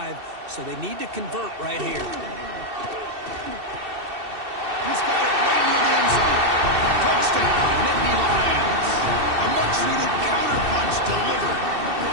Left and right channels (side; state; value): left; late; 2.7 ms